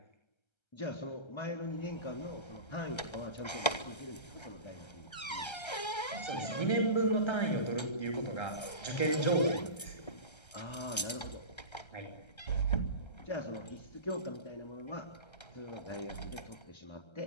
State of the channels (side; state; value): right; late; 1.3 ms